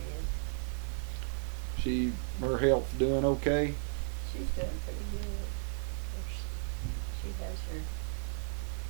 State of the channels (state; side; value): silent; left; 55 dB below the other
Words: Her health doing okay? She's doing pretty good. Of course, she has